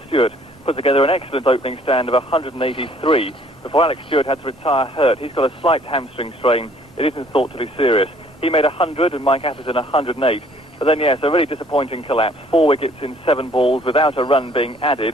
Stewart put together an excellent opening stand of 183 before Alex Stewart had to retire hurt. He's got a slight hamstring strain. It isn't thought to be serious. He made 100 and Mike Atherton 108. But then, yes, a really disappointing collapse. 4 wickets in 7 balls without a run being added.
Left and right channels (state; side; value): normal; both; correlation 0.59